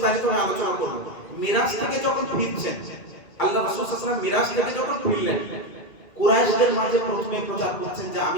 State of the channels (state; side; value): late; right; 2.3 ms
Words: আমি আলোচনা করব। মিরাজ থেকে যখন ফিরছেন, আল্লাহ রাসূল সাল্লাল্লাহু আলাইহি ওয়াসাল্লাম মিরাজ থেকে যখন ফিরলেন, কুরাইশদের মাঝে প্রথমে প্রচার করছেন যে